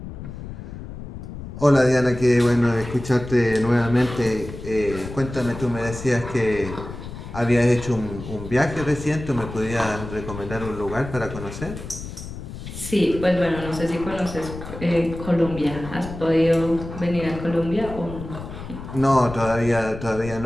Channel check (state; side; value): noise; left; rumble, 11 dB below the sound